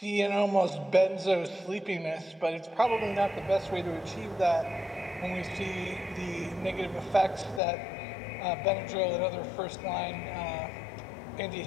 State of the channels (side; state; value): right; drops out; at 7.6 s